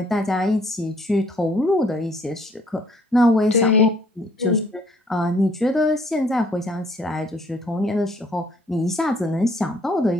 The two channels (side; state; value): both; normal; correlation 0.62